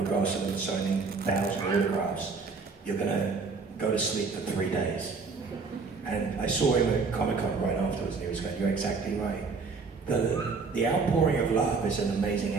of them, signing 1,000 autographs, you're going to go to sleep for 3 days. And I saw him at Comic-Con right afterwards, and he was going, you're exactly right. The outpouring of love is an amazing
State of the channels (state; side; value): quieter; left; 4.6 dB